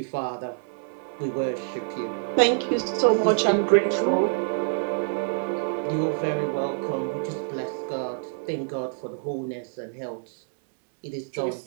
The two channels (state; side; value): silent; left; digital silence